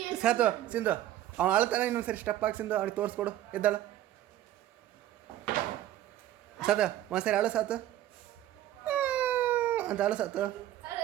ಸಾತು ಸಿಂಧು ಅವ್ನು ಅಳ್ತಾನೆ, ಇನ್ನೊಂದ್ಸರಿ ಸ್ಟೆಪ್ ಹಾಕಿ ಸಿಂಧು ಅವ್ನಿಗೆ ತೋರಿಸ್ಕೊಡು. ಎದ್ದಾಳ ಸಾತು ಒಂದ್ಸರಿ ಅಳು ಸಾತು ಅಂತ ಅಳು ಸಾತು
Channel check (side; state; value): left; quieter; 13.1 dB